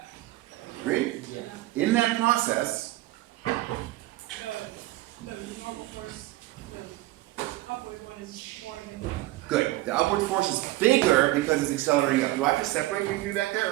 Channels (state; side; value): quieter; left; 17.6 dB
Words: Agreed? Yeah. In that process, The normal force, the upward one is more than. good. The upward force is bigger because it's accelerating up. Do I have to separate you two back